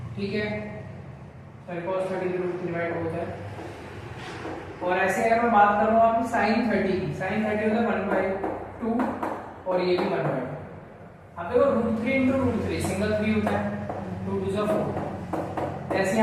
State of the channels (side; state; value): both; identical; correlation 1.00